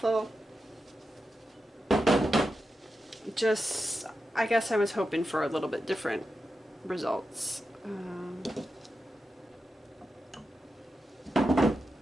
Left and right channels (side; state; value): both; normal; correlation 0.90